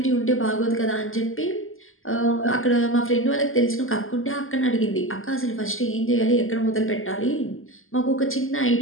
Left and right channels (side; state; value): right; late; 0.60 ms